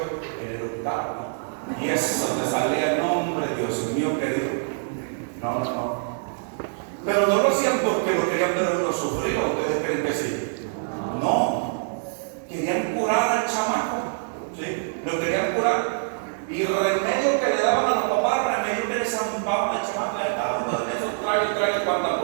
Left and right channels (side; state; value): left; silent; 61 dB below the other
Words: El octavo. Y es donde salía el nombre, Dios mío querido. No. Pero no lo hacían porque lo querían ver uno sufrir, ¿o ustedes creen que sí? No. Querían curar al chamaco. ¿Sí? Lo querían curar. Y el remedio que le daban a los papás, el remedio que le zampaban al chamaco, eso trae cuánta